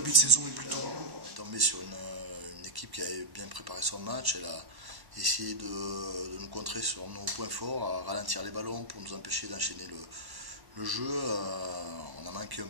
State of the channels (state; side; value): late; left; 1.1 ms